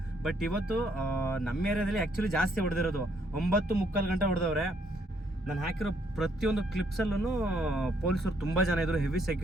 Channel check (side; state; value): both; normal; correlation 0.70